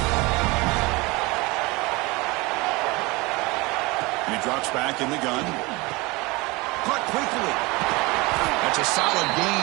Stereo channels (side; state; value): left; quieter; 24.1 dB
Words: He drops back in the gun. Caught quickly. That's a solid